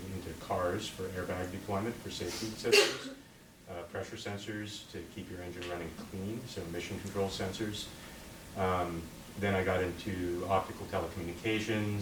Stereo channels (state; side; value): identical; both; correlation 1.00